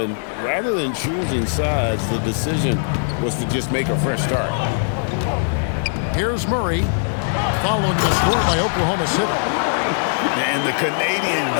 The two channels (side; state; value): right; silent; digital silence